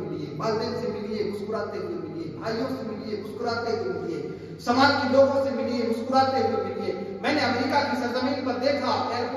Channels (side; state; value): both; identical; correlation 1.00